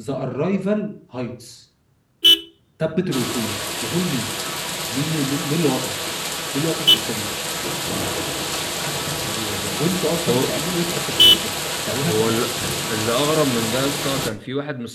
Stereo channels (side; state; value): both; identical; correlation 1.00